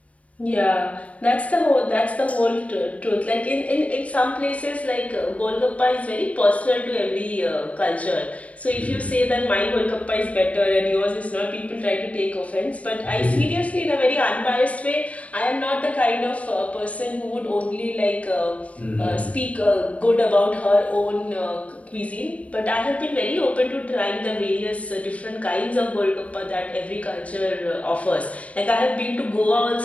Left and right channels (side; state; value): right; late; 0.067 ms